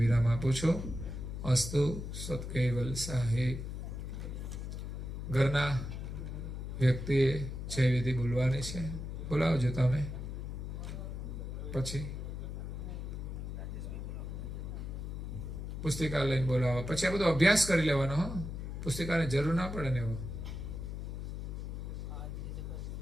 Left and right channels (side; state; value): left; noise; hum, 6 dB below the sound